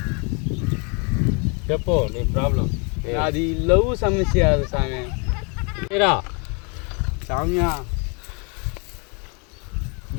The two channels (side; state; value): right; quieter; 34.4 dB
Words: చెప్పు నీ ప్రాబ్లం అది లవ్ సమస్య అది స్వామి మీరా సామ్య